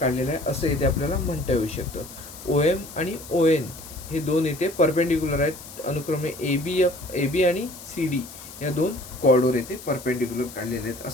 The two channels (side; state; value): left; noise; hiss, 15 dB below the sound